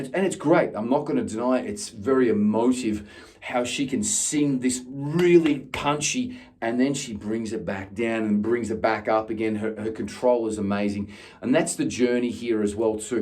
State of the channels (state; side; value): identical; both; correlation 1.00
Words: it's great. I'm not going to deny it. It's very emotive how she can sing this really punchy and then she brings it back down and brings it back up again. Her control is amazing. And that's the journey here as well